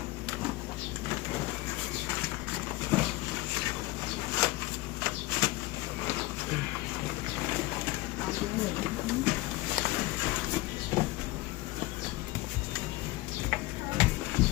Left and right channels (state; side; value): quieter; right; 19.5 dB